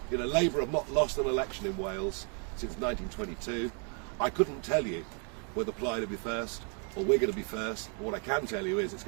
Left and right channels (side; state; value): left; quieter; 39.2 dB